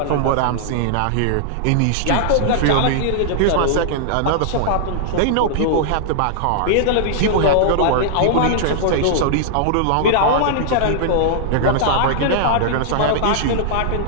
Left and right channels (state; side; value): different; both; correlation -0.01